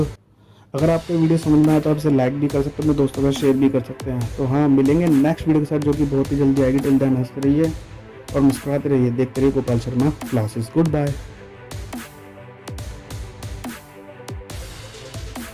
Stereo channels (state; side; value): identical; both; correlation 1.00